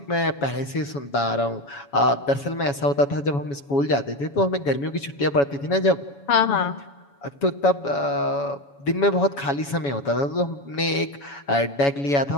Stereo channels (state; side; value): late; right; 7.1 ms